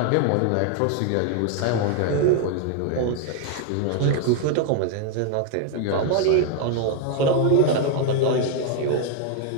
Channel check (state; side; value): different; both; correlation 0.01